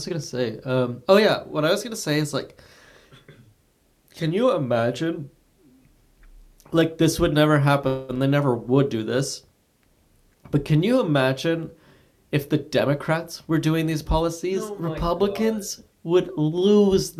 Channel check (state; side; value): identical; both; correlation 1.00